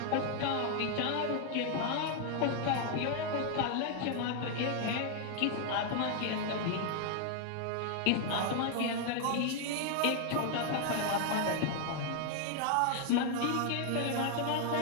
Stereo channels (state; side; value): different; both; correlation 0.00